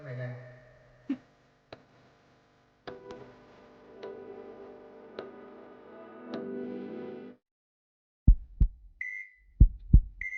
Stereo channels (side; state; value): both; identical; correlation 1.00